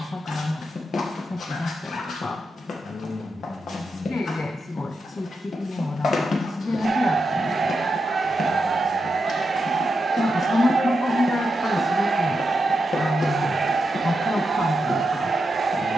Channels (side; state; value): both; normal; correlation 0.86